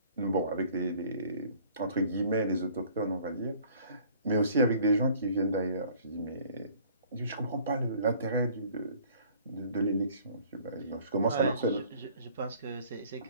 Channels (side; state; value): both; inverted; correlation -0.54